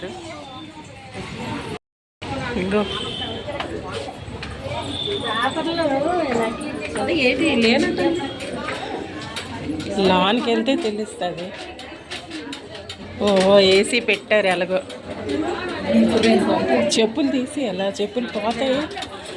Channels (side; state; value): both; identical; correlation 1.00